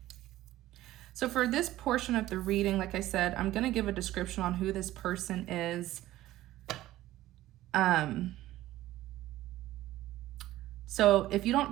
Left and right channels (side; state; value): left; quieter; 15.3 dB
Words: So for this portion of the reading, like I said, I'm going to give a description on who this person is. So if you don't